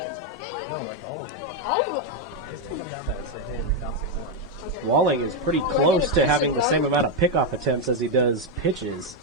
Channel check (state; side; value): normal; both; correlation 0.03